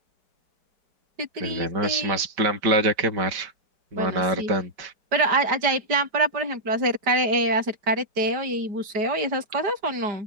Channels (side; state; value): left; late; 4.9 ms